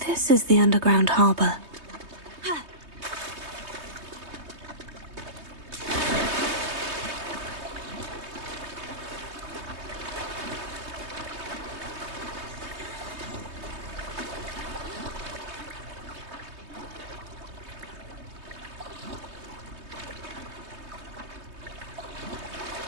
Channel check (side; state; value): left; late; 3.2 ms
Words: this is the underground harbor.